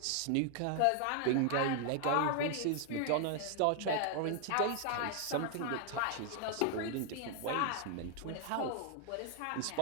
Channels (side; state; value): both; different; correlation 0.00